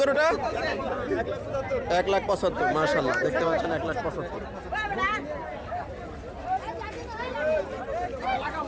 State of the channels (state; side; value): identical; both; correlation 1.00